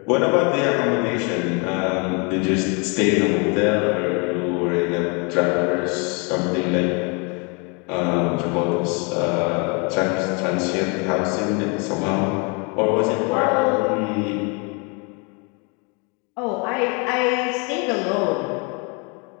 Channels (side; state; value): right; quieter; 32.9 dB